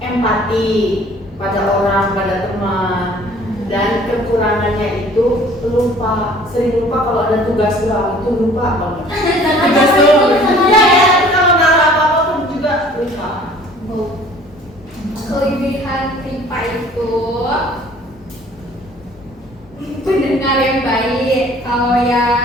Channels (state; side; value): normal; both; correlation 0.52